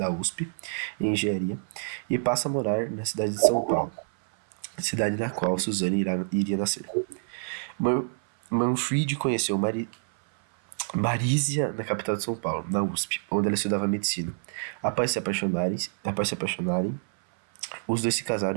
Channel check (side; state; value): left; silent; 57 dB below the other